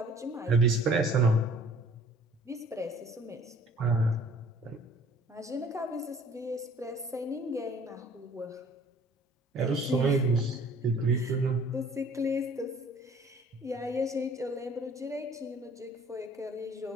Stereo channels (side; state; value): both; normal; correlation 0.53